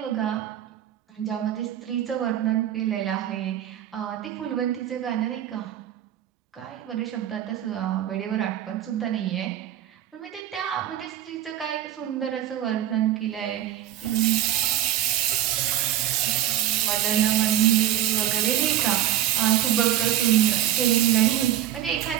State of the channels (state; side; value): quieter; left; 11.8 dB